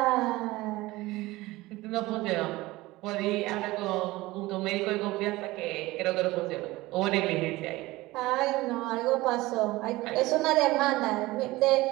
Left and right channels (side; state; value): left; quieter; 19.4 dB